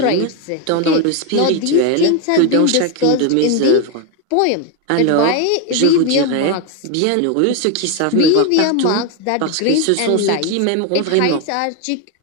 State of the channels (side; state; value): both; different; correlation 0.02